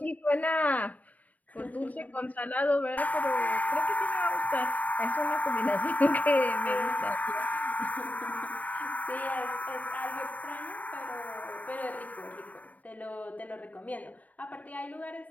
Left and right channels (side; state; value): right; late; 0.074 ms